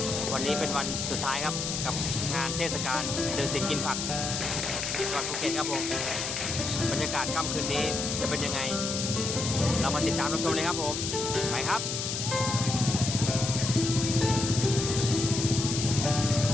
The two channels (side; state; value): left; noise; hiss, 3 dB below the sound